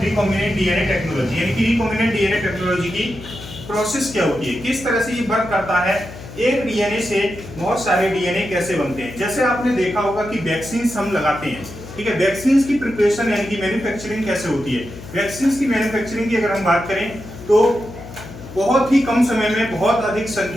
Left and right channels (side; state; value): left; noise; hum, 14 dB below the sound